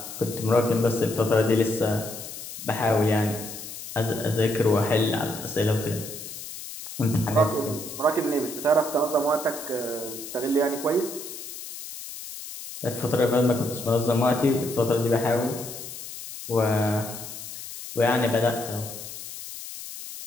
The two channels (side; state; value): left; noise; hiss, 11 dB below the sound